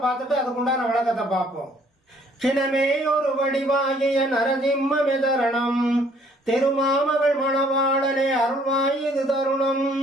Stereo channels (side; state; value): both; normal; correlation 0.61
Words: பார்த்துட்டு அதுக்குண்டான விளக்கத்தை பார்ப்போம். சினமே ஒரு வடிவாகிய நரசிம்ம மெதரணம், திருமாமகள் மணவாளனே அருள்வாயுது தருணம்.